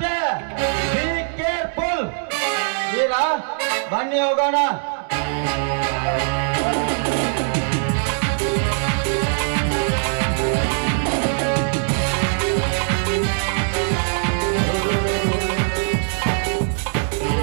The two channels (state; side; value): silent; left; 65 dB below the other